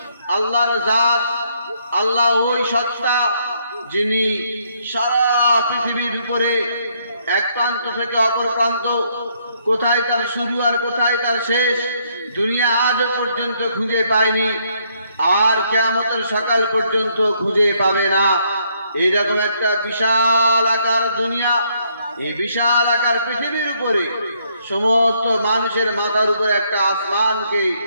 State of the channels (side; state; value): both; inverted; correlation -0.71